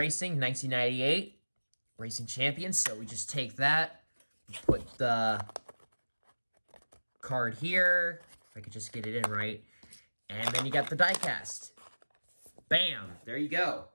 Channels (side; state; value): both; inverted; correlation -1.00